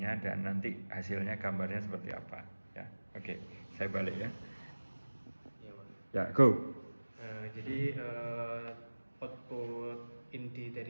dan nanti hasilnya gambarnya seperti apa ya. Oke, saya balik ya. Ya, Pak. Ya, go. Jadi output inti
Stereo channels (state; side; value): inverted; both; correlation -1.00